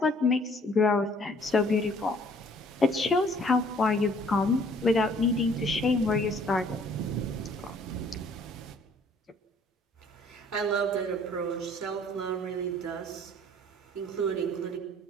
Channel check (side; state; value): both; normal; correlation 0.58